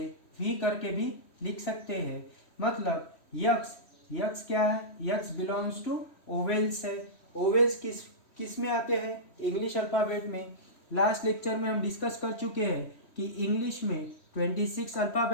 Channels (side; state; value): right; late; 3.1 ms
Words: भी करके भी लिख सकते हैं। मतलब यक्स क्या है, यक्स बिलोंग्स टू ओवेल्स है। ओवेल्स किस में आते हैं, इंग्लिश अल्फ़ाबेट में। लास्ट लेक्चर में हम डिस्कस कर चुके हैं कि इंग्लिश में 26